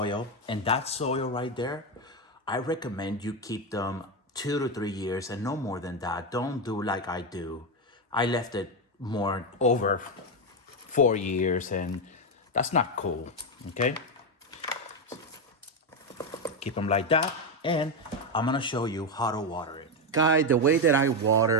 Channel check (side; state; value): both; normal; correlation 0.08